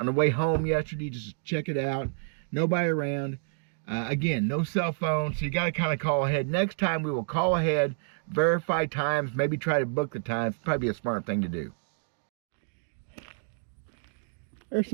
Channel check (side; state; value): left; silent; digital silence